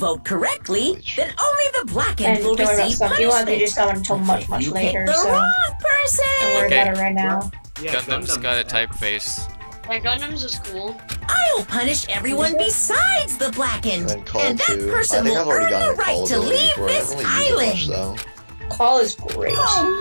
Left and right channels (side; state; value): both; inverted; correlation -1.00